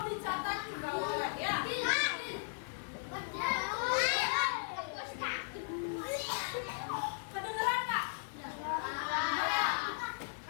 juga boleh ya. Kedengeran nggak?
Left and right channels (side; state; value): right; silent; 53 dB below the other